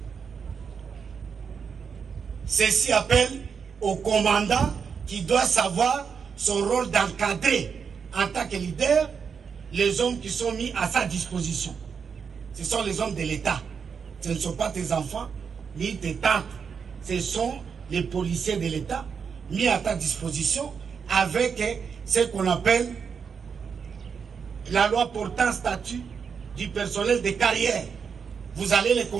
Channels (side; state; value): left; quieter; 6.3 dB